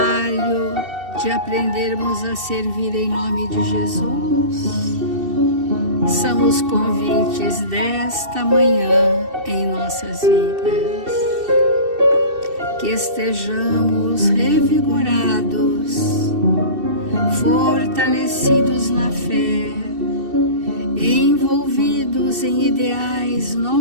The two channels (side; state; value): left; late; 2.7 ms